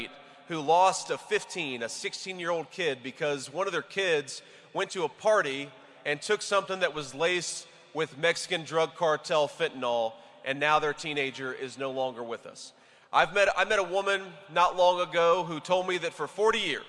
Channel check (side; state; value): both; identical; correlation 1.00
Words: who lost a 16-year-old kid because one of their kids went to a party and took something that was laced with Mexican drug cartel fentanyl, and now their teenager is no longer with us. I met a woman not long ago who told me that for 40